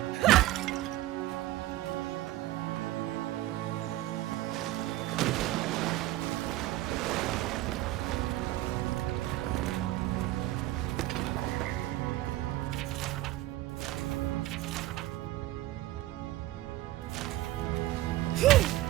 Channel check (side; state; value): left; quieter; 16.0 dB